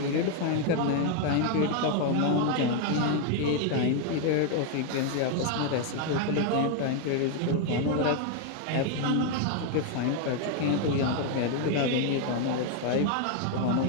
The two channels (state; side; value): different; both; correlation 0.01